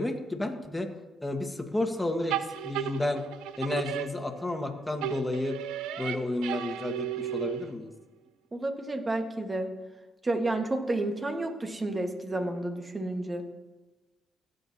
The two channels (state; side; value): normal; both; correlation 0.77